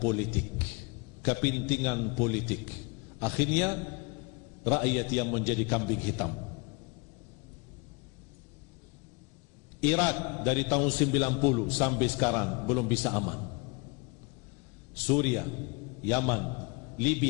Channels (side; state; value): right; quieter; 30.1 dB